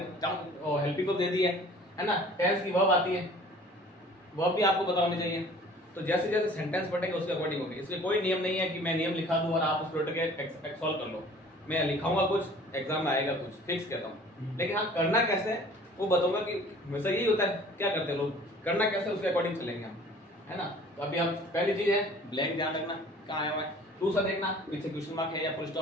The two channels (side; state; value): both; normal; correlation 0.49